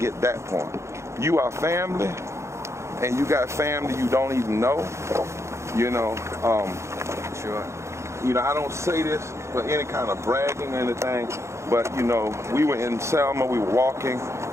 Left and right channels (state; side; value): late; left; 0.14 ms